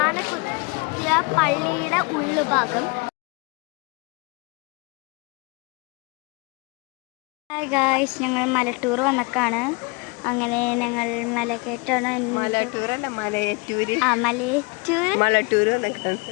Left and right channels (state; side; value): quieter; right; 29.8 dB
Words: പള്ളിയുടെ ഉള്ളുഭാഗം. Hi guys, ഞങ്ങൾ മലട്ടൂർ വന്നക്കാണ്. അങ്ങനെ ഞങ്ങൾ മലക്കയറ്റാണ്.